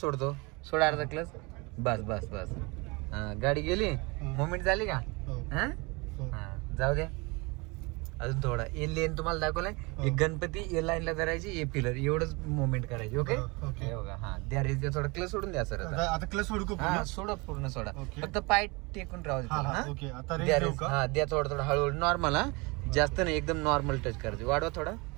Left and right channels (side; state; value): left; quieter; 27.0 dB